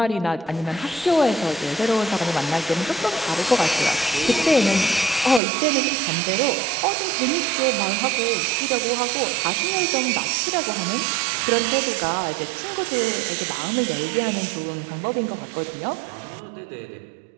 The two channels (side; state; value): left; drops out; at 5.4 s